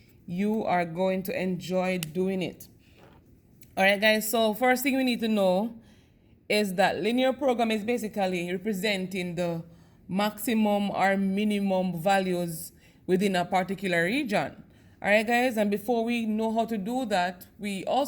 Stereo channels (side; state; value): both; identical; correlation 1.00